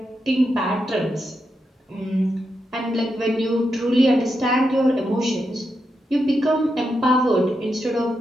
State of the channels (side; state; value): both; normal; correlation 0.85